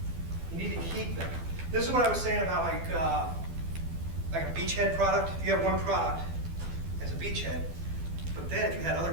You need to keep them. This is what I was saying about like a beachhead product. If you have one product as a beachhead, but then if you had other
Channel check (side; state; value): left; late; 12 ms